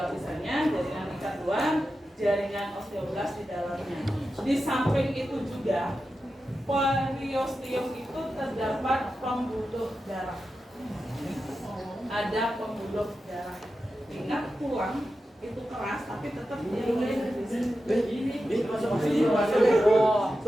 lapisannya, jaringan ikat luar, jaringan osteoblast di dalamnya. Di samping itu juga periosteum itu terdapat pembuluh darah. Ada pembuluh darah. Ingat tulang itu keras tapi tetap dia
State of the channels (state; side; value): normal; both; correlation 0.91